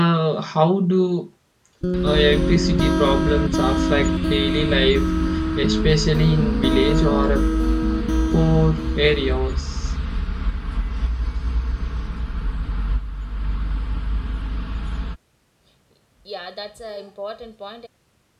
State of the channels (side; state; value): both; identical; correlation 1.00